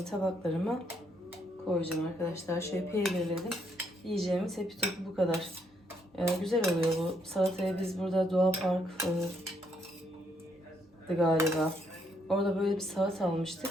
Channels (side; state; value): both; normal; correlation 0.74